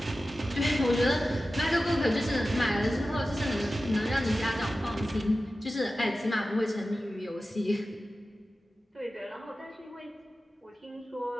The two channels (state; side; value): normal; both; correlation 0.94